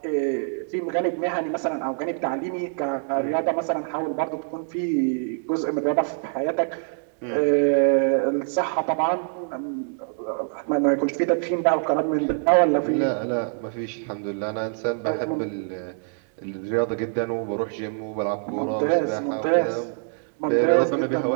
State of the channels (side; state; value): left; silent; 62 dB below the other